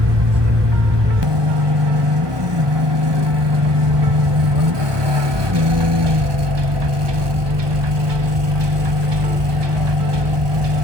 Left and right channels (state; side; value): late; left; 1.2 ms